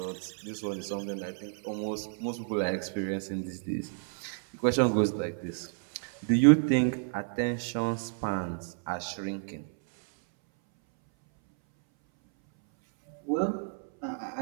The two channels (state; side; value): silent; left; 57 dB below the other